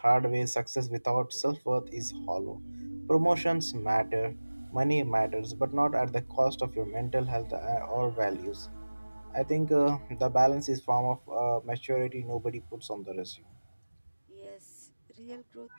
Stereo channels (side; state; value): both; inverted; correlation -1.00